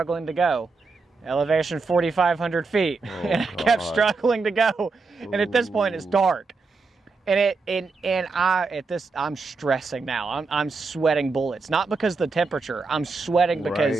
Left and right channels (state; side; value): quieter; left; 4.2 dB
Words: to go. Elevation 4,500 feet. And I kept struggling to go. And at this point it's dark. And I'm stressing now. I'm sweating bullets. Not because of the temperature. I'm sweating